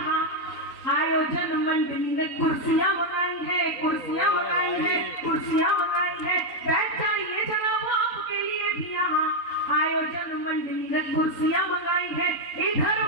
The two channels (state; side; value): late; right; 3.9 ms